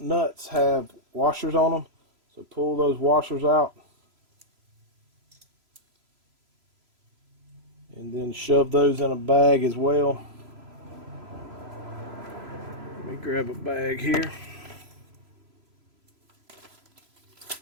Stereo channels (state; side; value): late; left; 3.0 ms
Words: have washers on them, so pull those washers out and then shove those in a bag as well. Let me grab a bag here.